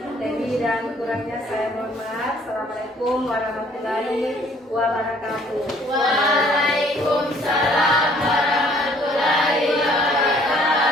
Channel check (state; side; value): normal; both; correlation 0.59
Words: Lebih dan kurangnya saya mohon maaf. Assalamualaikum warahmatullahi wabarakatuh. Waalaikumsalam warahmatullahi wabarakatuh.